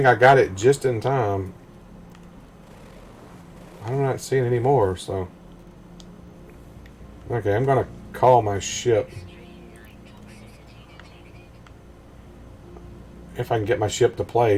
I got it just in time. I'm not seeing any more, so. Okay, I'm going to call my ship. If I can get my ship to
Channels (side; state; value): both; identical; correlation 1.00